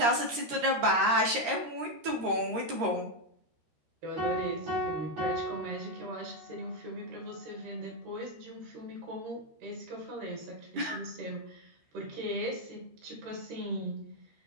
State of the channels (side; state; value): left; late; 13 ms